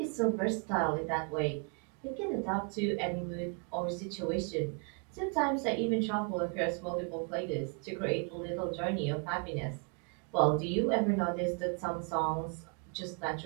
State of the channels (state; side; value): quieter; left; 36.7 dB